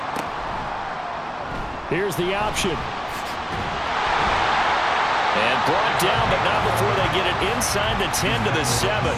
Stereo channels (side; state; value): both; identical; correlation 1.00